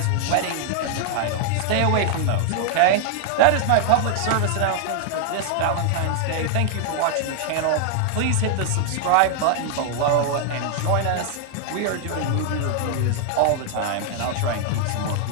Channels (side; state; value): both; different; correlation 0.00